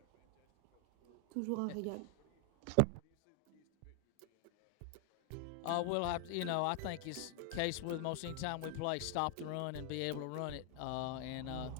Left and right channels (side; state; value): both; different; correlation 0.00